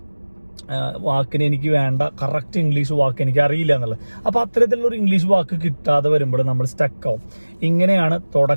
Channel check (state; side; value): inverted; both; correlation -1.00